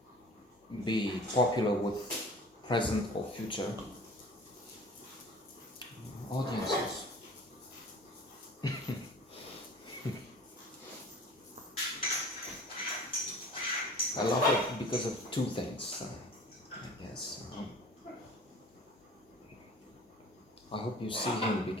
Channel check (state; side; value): normal; both; correlation 0.44